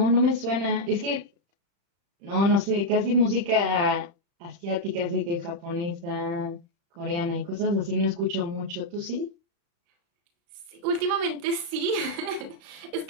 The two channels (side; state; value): left; late; 35 ms